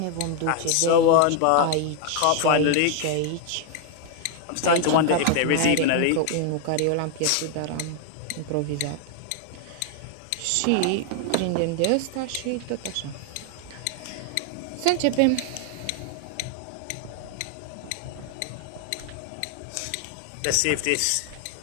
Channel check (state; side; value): different; both; correlation 0.00